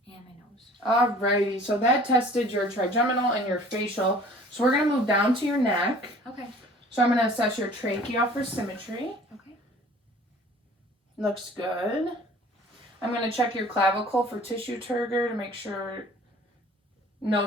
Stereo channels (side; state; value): both; normal; correlation 0.49